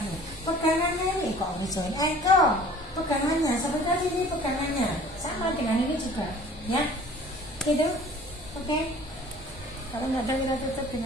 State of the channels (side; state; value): both; normal; correlation 0.49